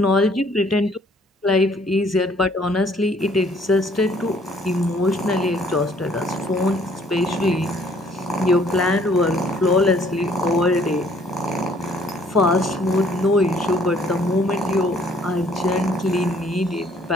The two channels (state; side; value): normal; both; correlation 0.61